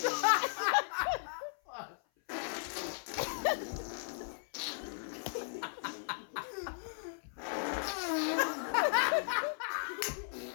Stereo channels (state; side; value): silent; right; 54 dB below the other